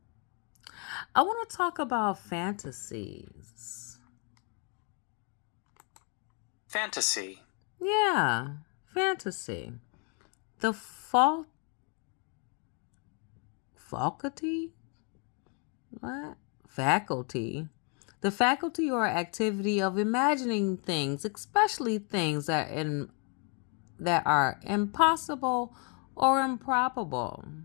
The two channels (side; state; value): right; quieter; 36.9 dB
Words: I want to talk about fantasies. Fantasy. Yeah, fantasy. The faculty? What? Faculty. The faculty or activity of imagining things, especially things that are impossible or improbable.